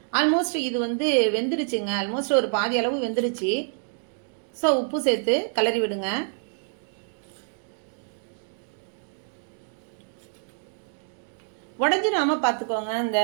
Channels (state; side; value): silent; left; digital silence